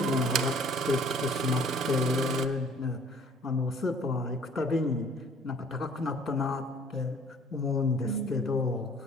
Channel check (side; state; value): both; normal; correlation 0.54